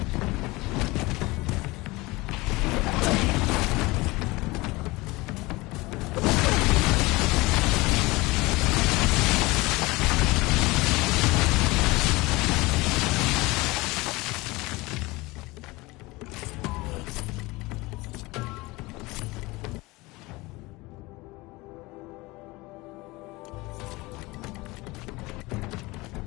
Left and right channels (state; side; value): quieter; right; 22.2 dB